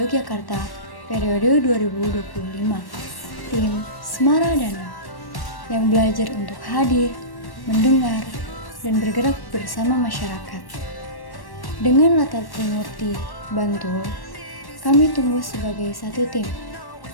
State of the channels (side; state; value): right; late; 1.1 ms